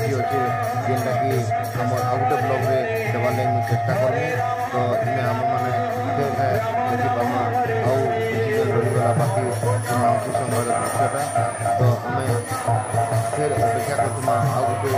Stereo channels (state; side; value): identical; both; correlation 1.00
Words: ଅଛେ ଯେନ୍ଟାକି ଆମର ଆଉ ଗୋଟେ ବ୍ଲଗ୍ରେ ଦେବାର୍ ଲାଗି ମୁଇଁ ଚେଷ୍ଟା କର୍ମି ତ ଇନେ ଆମମାନେ ଫେର୍ ଦେଖିପାର୍ମା ଆଉ କିଛି ରହିଗଲା ବାକି ମାଉସୀ ସମୟର ଦୃଶ୍ୟଟା ତ ଆମେ फिर अपेक्षा करतुमा आ गोटे